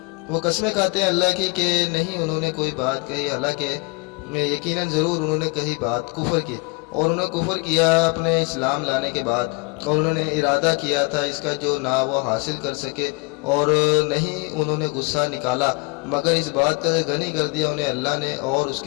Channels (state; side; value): quieter; right; 28.6 dB